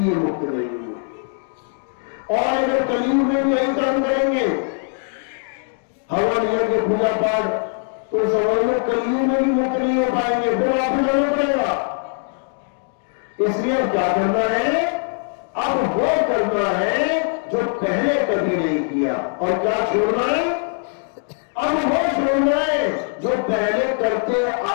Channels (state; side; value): silent; right; 59 dB below the other